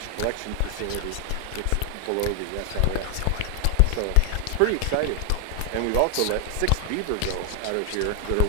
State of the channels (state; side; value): different; both; correlation 0.00